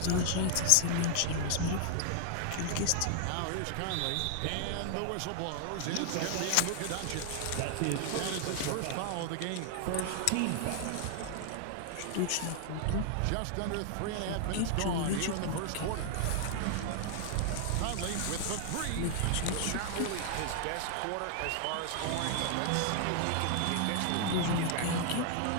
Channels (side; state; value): both; different; correlation 0.00